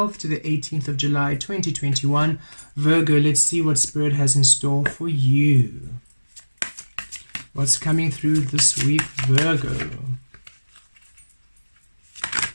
to the 18th of July 2021. Virgo, let's see what Spirit has in store for you. What's coming through this week, Virgo?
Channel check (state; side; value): inverted; both; correlation -1.00